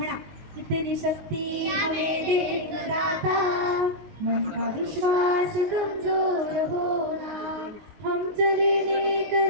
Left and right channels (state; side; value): late; left; 19 ms